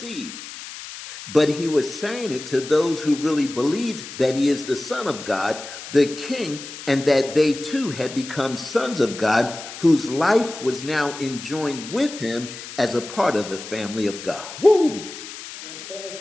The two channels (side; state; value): left; noise; hiss, 12 dB below the sound